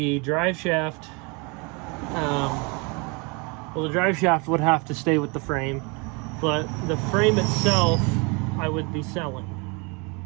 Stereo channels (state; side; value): quieter; left; 30.2 dB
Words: drive shaft, the drive shaft would have to stay with the frame, but the frame itself I would be selling.